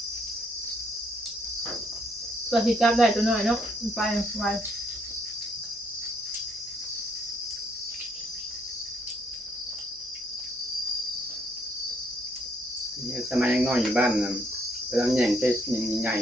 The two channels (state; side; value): normal; both; correlation 0.70